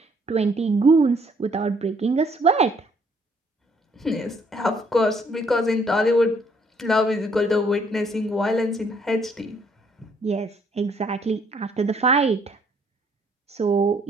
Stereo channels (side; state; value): both; normal; correlation 0.65